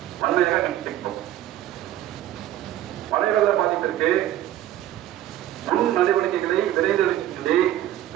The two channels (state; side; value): quieter; left; 12.9 dB